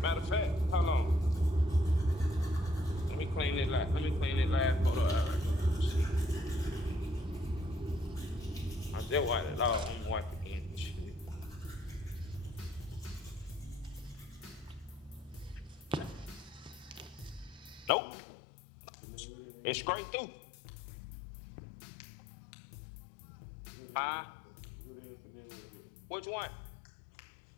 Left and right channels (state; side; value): drops out; right; at 17.9 s